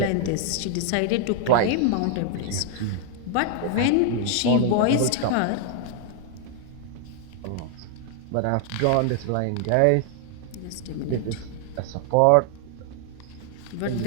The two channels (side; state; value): both; different; correlation 0.00